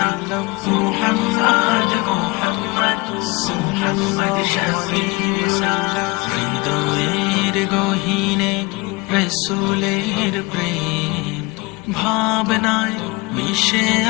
محمد محمد محمد شفيعنا হৃদয়ের গহীনে রসুলের প্রেম ভাবনায় মিশে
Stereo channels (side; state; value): right; quieter; 25.0 dB